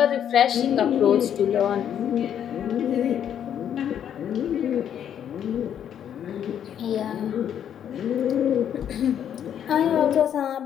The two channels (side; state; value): right; quieter; 9.4 dB